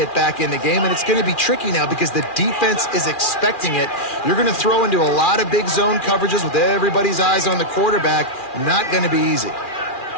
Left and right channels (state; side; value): late; right; 2.4 ms